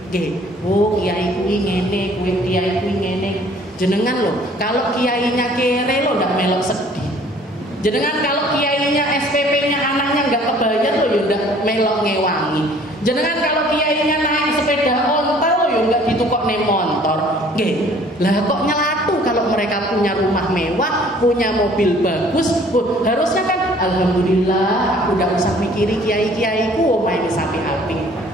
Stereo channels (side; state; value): both; normal; correlation 0.55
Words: Kiai kuwi ngene, kiai kuwi ngene. Jenengan loh, kalau kiainya kere lo ndak melok sedih. Jenengan kalau kiainya SPP-nya anaknya nggak kebayar lo ya ndak melok ngewangi. Jenengan kalau kiainya naik sepeda ontel lo ya nggak ditukok nih motor. Lah kok nyelatu kalau mereka punya rumah mewah, punya mobil bagus. Harusnya kan alhamdulillah aku ndak usah mikiri kiai-kiaiku omahe wis apik-apik.